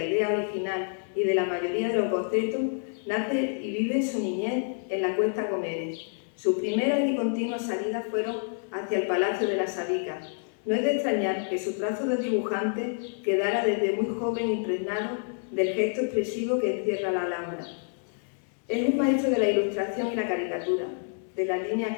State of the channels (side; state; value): right; silent; 58 dB below the other